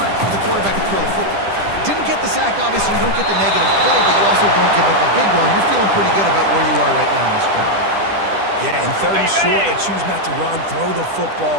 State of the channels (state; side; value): late; left; 10 ms